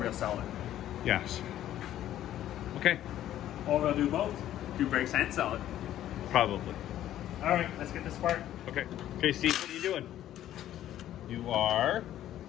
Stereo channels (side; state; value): right; quieter; 12.3 dB